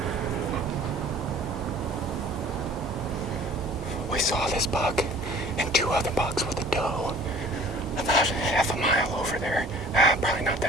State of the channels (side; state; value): both; normal; correlation 0.49